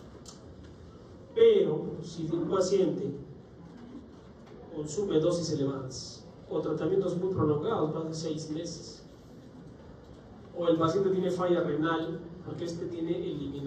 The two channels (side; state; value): both; identical; correlation 1.00